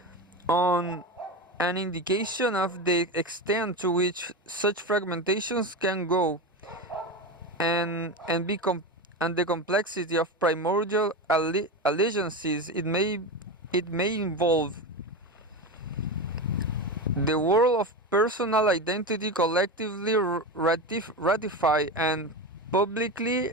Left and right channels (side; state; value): both; normal; correlation 0.21